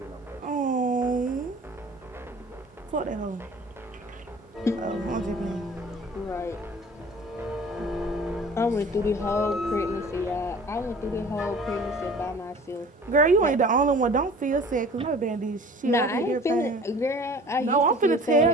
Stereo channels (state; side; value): normal; both; correlation 0.46